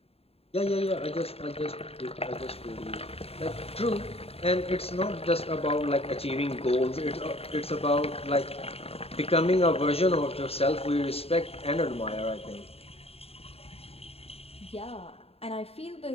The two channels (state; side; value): late; right; 0.29 ms